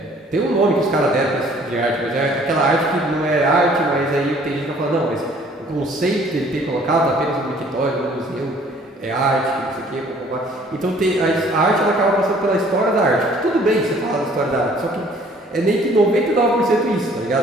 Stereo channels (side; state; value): both; normal; correlation 0.57